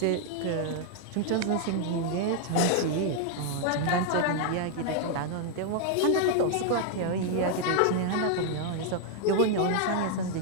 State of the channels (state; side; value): different; both; correlation 0.00